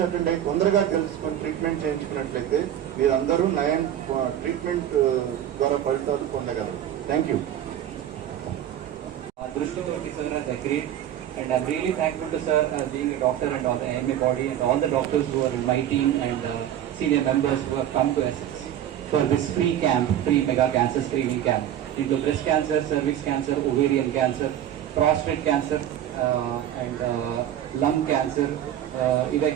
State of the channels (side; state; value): left; quieter; 11.0 dB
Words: అటెండ్ అయ్యి తొందరగా తెలుసుకొని ట్రీట్మెంట్ చేయించుకున్నట్లయితే మీరందరూ నయం ట్రీట్మెంట్ ద్వారా ఫలితాలు పొందగలరు. Thank you. And I'm really thankful to sir being a doctor and all the AMA body and all the doctors who are in my team and senior members who have come to assist for this free camp, free mega cancer screening camp into breast cancer, cervix cancer, ovarian cancer, prostate cancer and lung cancer, ఇవే